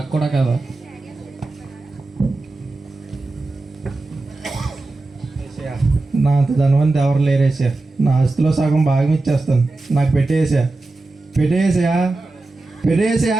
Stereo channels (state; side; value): quieter; left; 3.1 dB